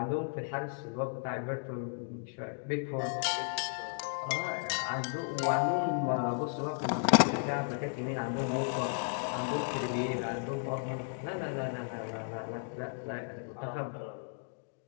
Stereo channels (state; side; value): silent; right; digital silence